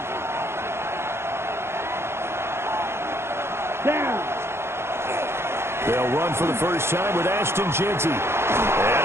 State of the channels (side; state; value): left; late; 0.12 ms